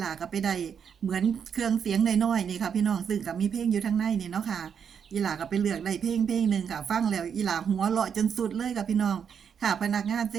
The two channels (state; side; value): quieter; left; 7.4 dB